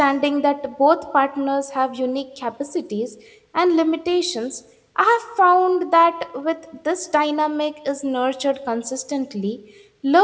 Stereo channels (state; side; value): identical; both; correlation 1.00